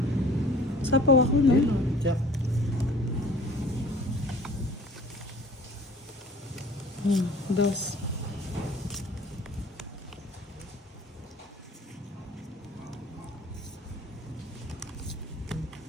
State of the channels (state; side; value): normal; both; correlation 0.49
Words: Sapaw ako, no? Check. Dos.